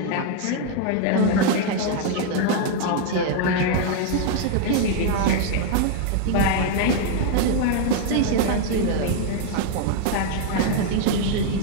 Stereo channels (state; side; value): different; both; correlation 0.00